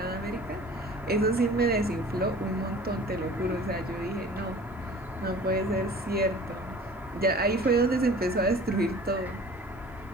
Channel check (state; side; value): normal; both; correlation 0.45